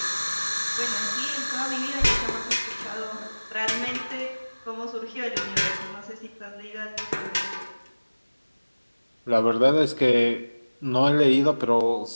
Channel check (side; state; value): both; inverted; correlation -1.00